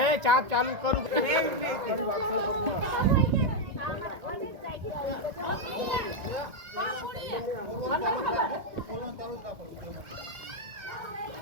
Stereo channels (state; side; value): late; left; 1.9 ms